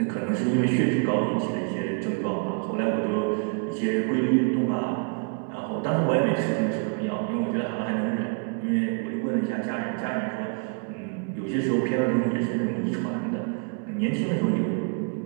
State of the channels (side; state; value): left; quieter; 39.7 dB